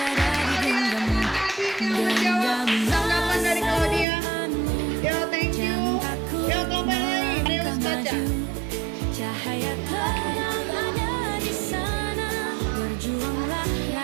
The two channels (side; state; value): left; drops out; at 4.0 s